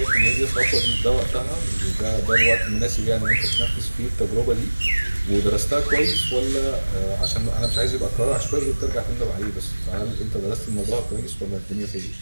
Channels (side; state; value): both; inverted; correlation -1.00